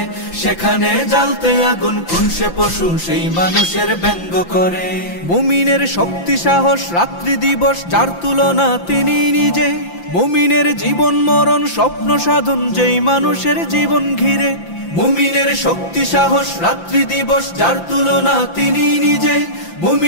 সেখানে জ্বালতে আগুন কোন সে পশু সেই মানুষের ব্যঙ্গ করে। মুমিনের শক্তি সাহস রাত্রি দিবস যার তুলনা তিনি নিজে, মুমিনের জীবন মরণ স্বপ্ন সাধন যেই মানুষের জীবন ঘিরে। মুমিনের শক্তি সাহস রাত্রি দিবস যার তুলনা তিনি নিজে,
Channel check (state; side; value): late; right; 5.8 ms